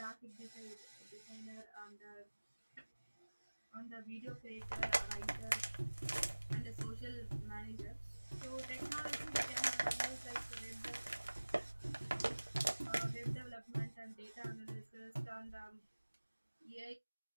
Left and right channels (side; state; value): both; inverted; correlation -1.00